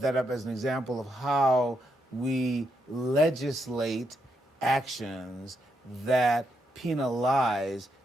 that up as an example of how we legislate actions that penalize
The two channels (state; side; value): normal; both; correlation 0.80